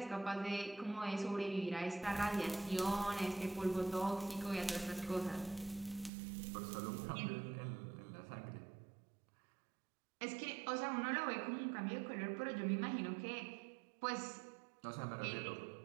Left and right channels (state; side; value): drops out; left; at 6.1 s